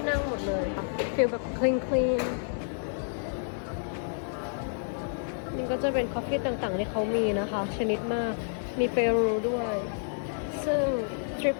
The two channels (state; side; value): silent; right; digital silence